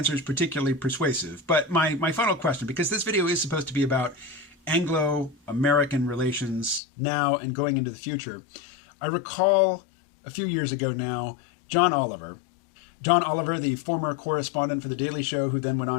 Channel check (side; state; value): right; drops out; at 6.8 s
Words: particularly persuasive. But my final question, because this video is supposed to be about Anglo-American relations now and going into the future, I recall a few years ago now, John Oliver, the former correspondent for The Daily Show, who then went